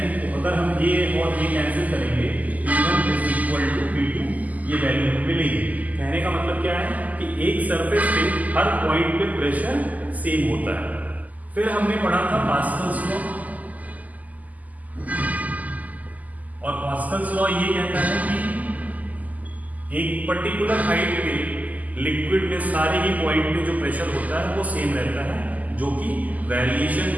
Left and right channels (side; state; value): left; late; 0.078 ms